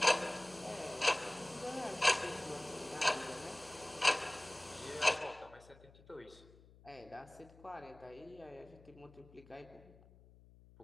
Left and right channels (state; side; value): noise; left; hum, 23 dB below the sound